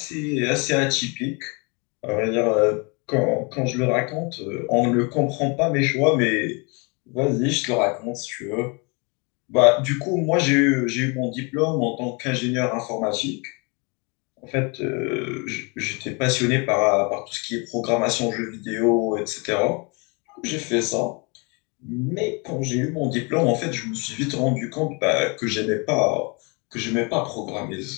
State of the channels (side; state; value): right; quieter; 31.4 dB